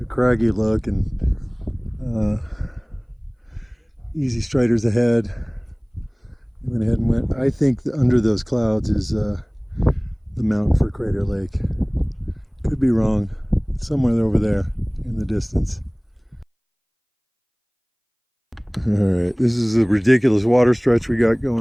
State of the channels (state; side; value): identical; both; correlation 1.00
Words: craggy look and easy striders ahead. Went ahead and went. I think under those clouds is the mountain for Crater Lake. Could be wrong. Somewhere over there in the distance. All right, this is a ridiculous water stretch we got